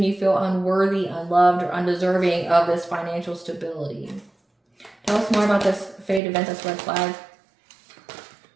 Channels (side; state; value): left; drops out; at 6.2 s